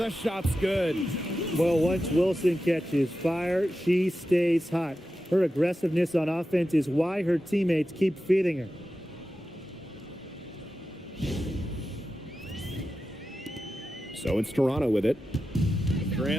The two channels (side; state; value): both; normal; correlation 0.92